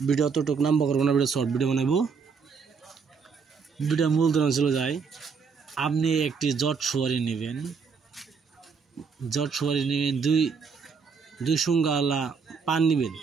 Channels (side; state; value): left; quieter; 5.6 dB